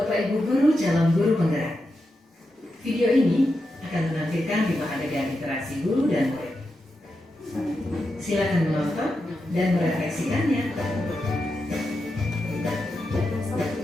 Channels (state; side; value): normal; both; correlation 0.88